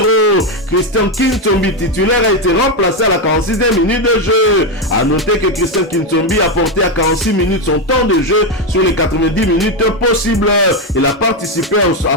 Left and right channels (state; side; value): normal; both; correlation 0.07